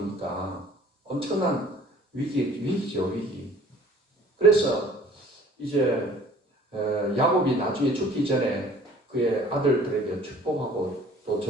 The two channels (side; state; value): both; normal; correlation 0.52